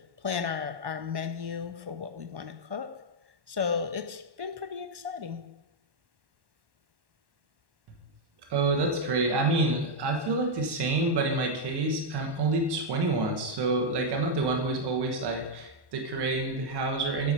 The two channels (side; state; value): left; late; 1.1 ms